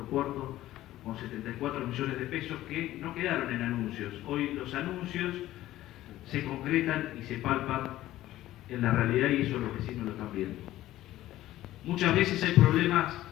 puerto, con 74 millones de pesos que no quedaron en anuncios. Hoy los anuncios se concretan y se palpan en la realidad, y eso los vecinos lo están viendo. Muchas veces hay problemas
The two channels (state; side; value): quieter; right; 14.8 dB